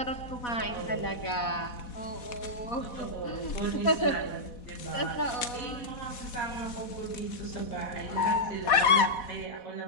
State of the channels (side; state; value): right; late; 4.1 ms